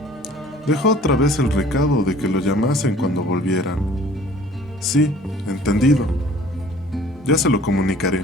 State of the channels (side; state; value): both; normal; correlation 0.51